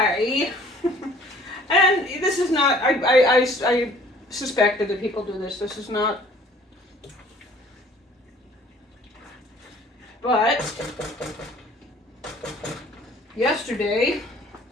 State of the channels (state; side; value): normal; both; correlation 0.54